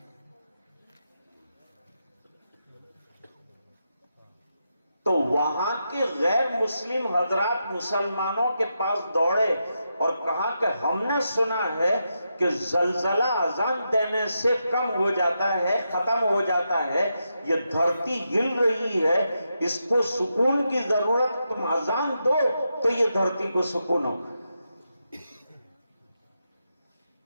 تو وہاں کے غیر مسلم حضرات مسلمانوں کے پاس دوڑے اور کہا کہ ہم نے سنا ہے کہ زلزلہ اذان دینے سے کم ہو جاتا ہے، ختم ہو جاتا ہے، یہ دھرتی ہل رہی ہے، اس کو سکون کی ضرورت، تم اذان دو تو یہ دھرتی کو سکون ہو۔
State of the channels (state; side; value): inverted; both; correlation -0.85